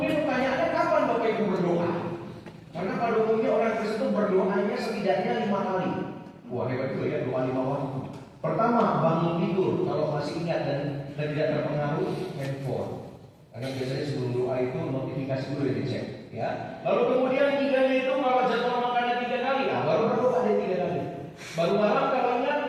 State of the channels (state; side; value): identical; both; correlation 1.00